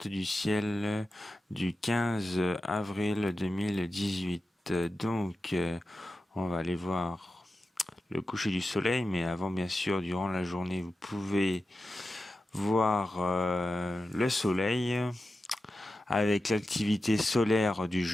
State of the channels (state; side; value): normal; both; correlation 0.92